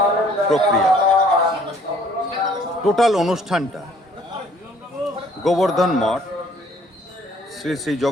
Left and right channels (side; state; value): both; normal; correlation 0.59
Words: প্রক্রিয়া। টোটাল অনুষ্ঠানটা গোবর্ধন মঠ শ্রী শ্রী